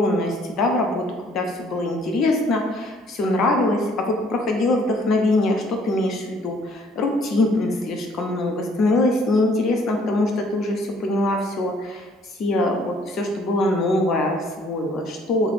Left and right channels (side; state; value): both; normal; correlation 0.61